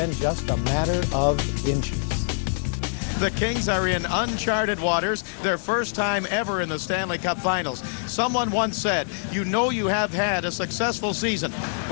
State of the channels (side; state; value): right; silent; digital silence